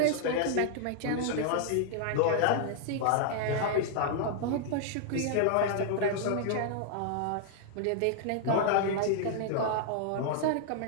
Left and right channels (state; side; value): different; both; correlation 0.00